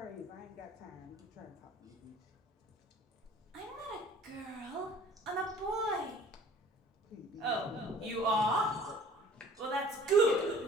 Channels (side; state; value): both; normal; correlation 0.51